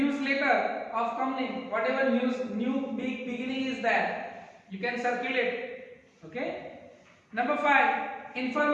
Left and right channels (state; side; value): identical; both; correlation 1.00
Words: of company, whatever news, new big beginning is there, you can circulate. Okay. Number 5,